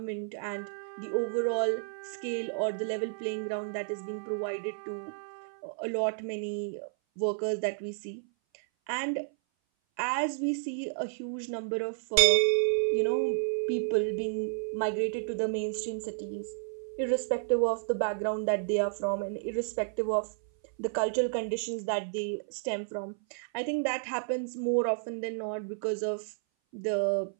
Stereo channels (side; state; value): left; silent; 57 dB below the other